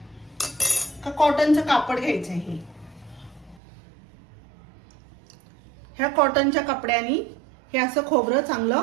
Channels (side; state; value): left; drops out; at 3.6 s